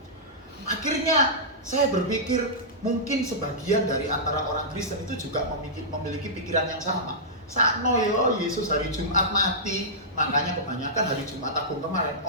Akhirnya saya berpikir mungkin sebagian dari antara orang Kristen itu juga memiliki pikiran yang sama. Sakno yo, Yesus hari Jumat mati, makanya kebanyakan hari Jumat Agung kemarin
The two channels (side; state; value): both; normal; correlation -0.15